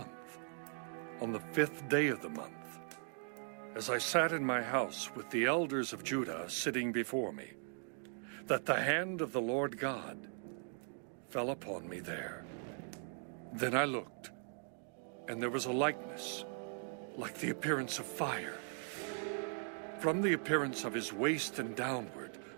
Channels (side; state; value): left; silent; 51 dB below the other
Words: on the 5th day of the month, as I sat in my house with the elders of Judah sitting before me, that the hand of the Lord God fell upon me there. Then I looked, and there was a likeness, like the appearance of fire. From the appearance of his waist and downward,